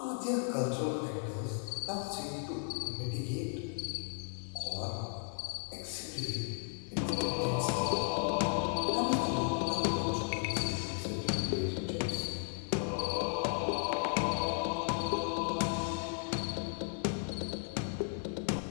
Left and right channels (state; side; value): silent; right; 54 dB below the other